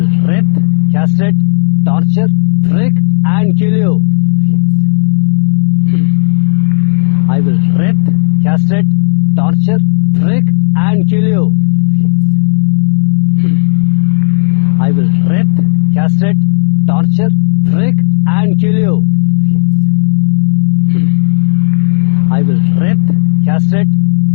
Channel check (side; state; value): right; silent; digital silence